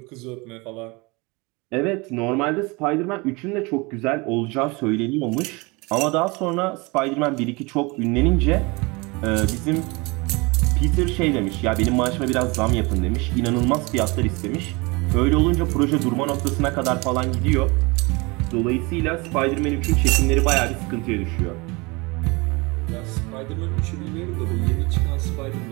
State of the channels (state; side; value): quieter; left; 26.1 dB